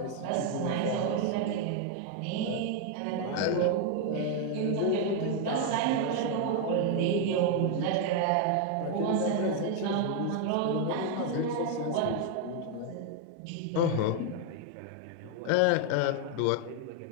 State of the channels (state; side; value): different; both; correlation 0.01